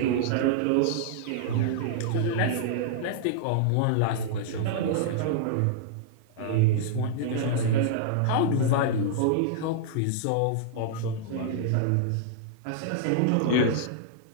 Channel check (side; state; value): both; different; correlation -0.01